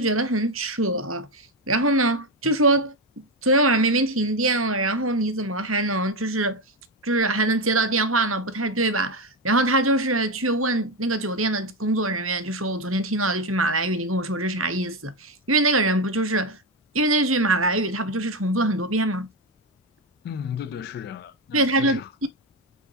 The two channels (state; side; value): normal; both; correlation 0.11